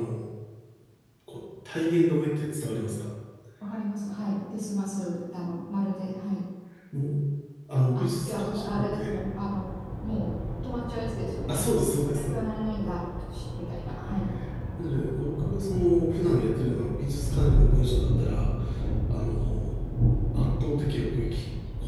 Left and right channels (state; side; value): identical; both; correlation 1.00